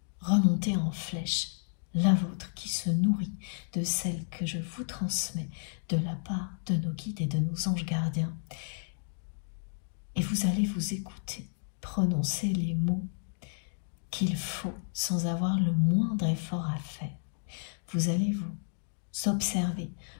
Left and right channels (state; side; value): silent; right; digital silence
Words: remonter en flèche, la vôtre qui se nourrit de celle que je vous transmets de la part de nos guides et de nos anges gardiens. Et vous allez vous écouter prononcer les mots qu'il faut sans avoir le moindre effort à faire. Vous allez vous observer,